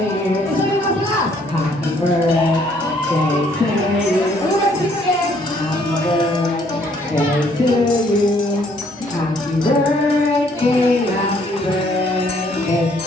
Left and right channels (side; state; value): both; normal; correlation 0.65